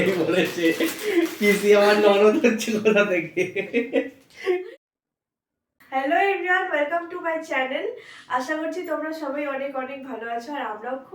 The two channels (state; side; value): identical; both; correlation 1.00